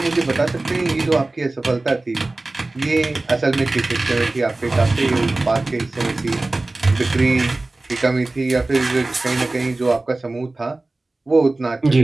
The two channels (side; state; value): left; quieter; 3.0 dB